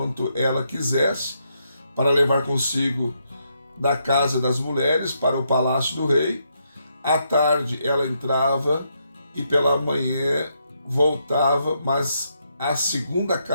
ela quisesse, para levar consigo da casa das mulheres para o palácio do rei. À tarde ela entrava e pela manhã voltava, mas à segunda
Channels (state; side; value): inverted; both; correlation -0.78